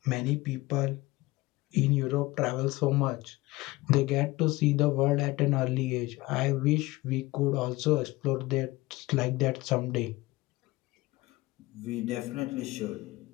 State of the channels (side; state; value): right; quieter; 20.4 dB